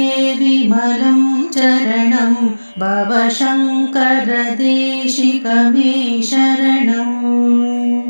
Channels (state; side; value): inverted; both; correlation -1.00